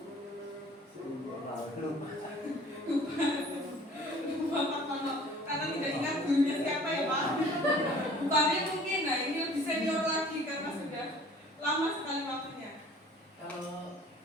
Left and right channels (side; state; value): both; normal; correlation 0.50